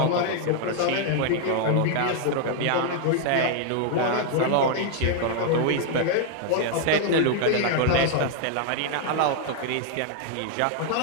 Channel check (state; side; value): different; both; correlation 0.00